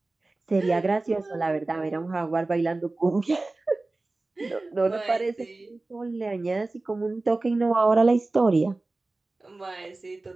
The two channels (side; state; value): left; quieter; 3.2 dB